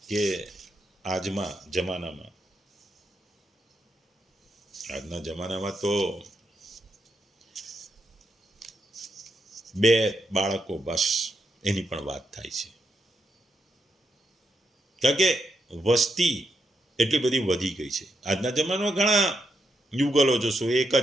કે આજના જમાનામાં તો 2 બાળકો બસ એની પણ વાત થાય છે. કારણ કે વસ્તી એટલી બધી વધી ગઈ છે. આજના જમાનામાં ઘણા યુગલો જોશો, એક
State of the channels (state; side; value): normal; both; correlation 0.82